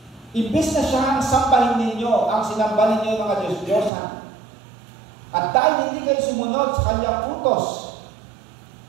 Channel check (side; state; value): left; drops out; at 3.9 s